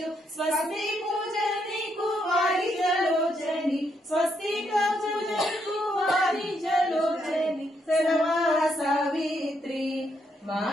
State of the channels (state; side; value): normal; both; correlation 0.76